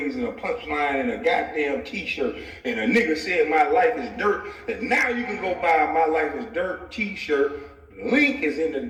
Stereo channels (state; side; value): identical; both; correlation 1.00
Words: and a punchline and a goddamn t-shirt and a nigga said my life is dirt and now you can go buy my life is dirt t-shirt. Link is in the